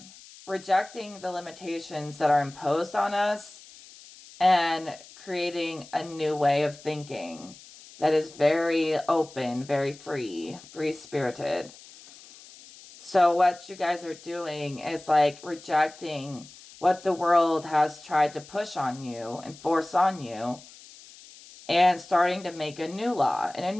Rejecting the limitations that are imposed on us and creating a new way of thinking that is very open, very free-spirited. So what you guys are doing is rejecting what the world has tried to push on you and force on you, and starting to make a new law in a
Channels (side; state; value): left; noise; hiss, 20 dB below the sound